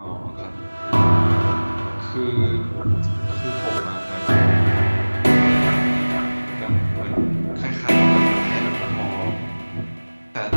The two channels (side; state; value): both; inverted; correlation -1.00